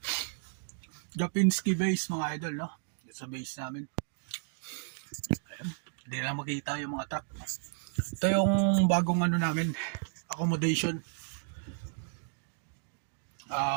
Japinski base mga idol, no? Sa base namin. Ayan. Hindi na lang makita yung mga truck. Ito yung bagong ano namin, accommodation.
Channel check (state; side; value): silent; left; digital silence